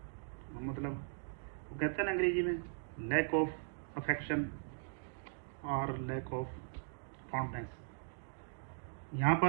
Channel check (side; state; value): left; silent; digital silence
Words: मतलब वो कहते हैं ना अंग्रेजी में, लैक ऑफ अफेक्शन और लैक ऑफ फॉन्डनेस। यहाँ